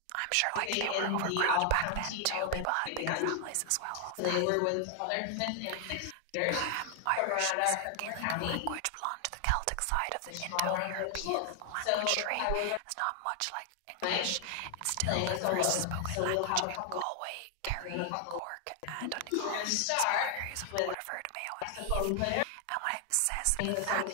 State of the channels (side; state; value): both; different; correlation 0.00